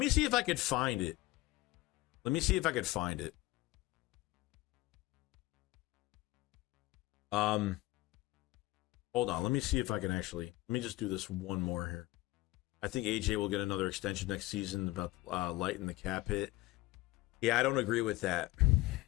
me see if I could find it. Hold Hold on. Let me see if I can actually. Let me just do this one more here. I think AJ will get another extension next season about lighten the cap hit. Yeah, I don't agree with that.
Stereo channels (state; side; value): quieter; right; 19.5 dB